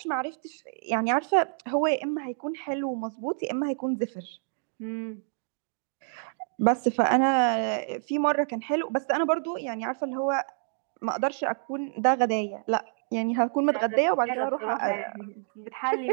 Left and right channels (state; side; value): silent; left; digital silence